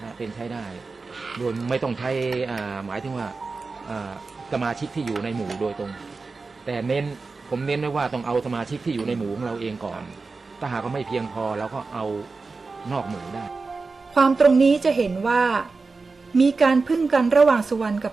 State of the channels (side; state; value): left; quieter; 4.1 dB